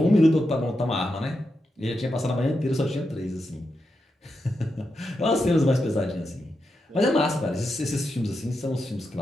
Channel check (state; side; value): normal; both; correlation 0.86